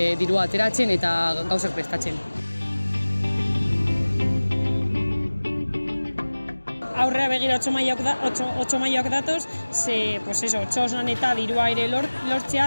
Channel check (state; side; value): inverted; both; correlation -1.00